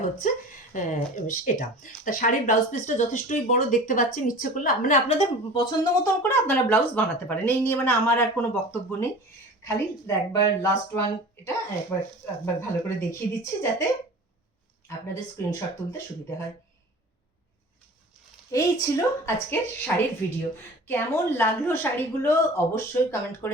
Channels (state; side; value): normal; both; correlation 0.39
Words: হচ্ছে এটা। তা শাড়ির ব্লাউজ পিসটা যথেষ্টই বড় দেখতে পাচ্ছেন, ইচ্ছে করলে মানে আপনাদের পছন্দ মতন করে আপনারা ব্লাউজ বানাতে পারেন, এই নিয়ে মানে আমার আর কোনো বক্তব্য নেই। খালি একবার লাস্ট ওয়ান এটা একবার ভালো করে দেখিয়ে দিচ্ছি যাতে আপনাদের স্ক্রিনশট তুলতে সুবিধা হয়। এই ছিল আজকের শাড়ির ভিডিও। কেমন লাগলো শাড়িগুলো অবশ্যই কমেন্ট